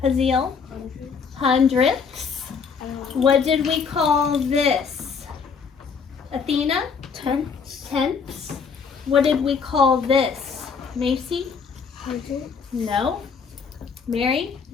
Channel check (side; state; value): right; quieter; 5.8 dB